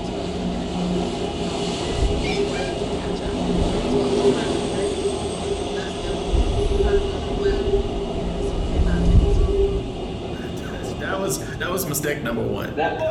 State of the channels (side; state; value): both; identical; correlation 1.00